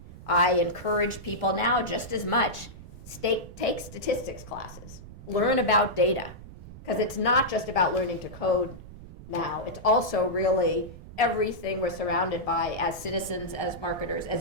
I encourage people now just as much, take statistics classes, learn about data, because it's not just about learning to code now, it's also really everything we're surrounded by as citizens, as marketers, as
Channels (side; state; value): right; noise; rumble, 16 dB below the sound